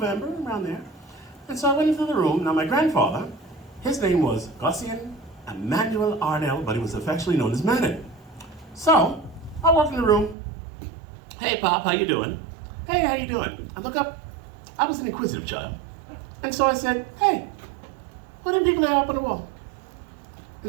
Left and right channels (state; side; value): drops out; left; at 10.4 s